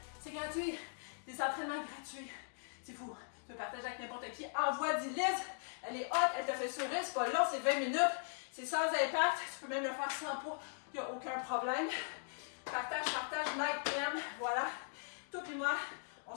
c'est gratuit. Des entraînements gratuits. C'est fou. Tu peux partager avec n'importe qui. Envoie 10 Liz. Elle est hot, elle te fait sourire. C'est pas long, c'est 20 minutes. C'est sans impact. Tu peux même le faire sans poids. Il n'y a aucun problème. Partage, like, aime. Voilà. Toi et moi, on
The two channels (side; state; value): right; silent; digital silence